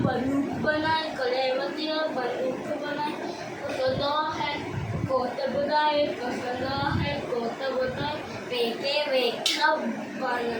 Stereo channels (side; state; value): both; identical; correlation 1.00